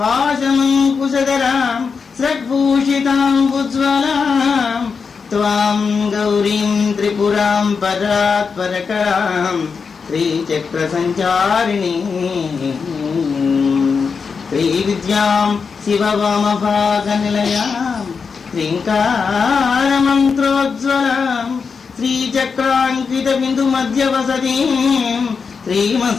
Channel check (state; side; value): quieter; right; 5.4 dB